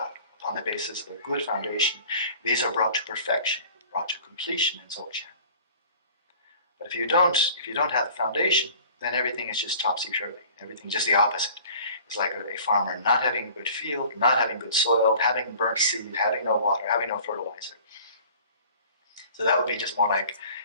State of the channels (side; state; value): both; inverted; correlation -0.47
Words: upon the basis of a good foundation, these are brought to perfection, brought to completion in Dzogchen. But if you don't have the foundation, then everything is just topsy-turvy. Everything's just the opposite. It's like a farmer not having a good field, not having good soil, having burnt seed, having no water, having no fertilizer. So that would be just more like,